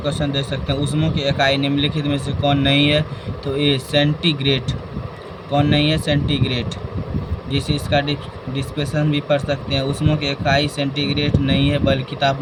देख सकते हैं। ऊष्मा की इकाई निम्नलिखित में से कौन नहीं है? तो ए सेंटीग्रेड। कौन नहीं है? सेंटीग्रेड। जिसे इसका डिस्पेशन भी पढ़ सकते हैं। ऊष्मा की इकाई सेंटीग्रेड नहीं है, बल्कि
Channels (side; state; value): both; identical; correlation 1.00